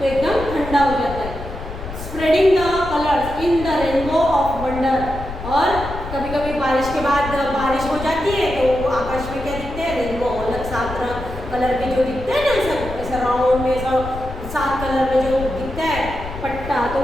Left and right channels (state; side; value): noise; left; rumble, 10 dB below the sound